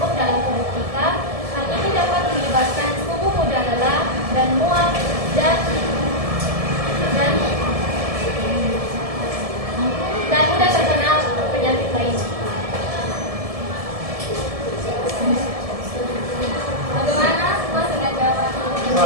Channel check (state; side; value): late; left; 1.7 ms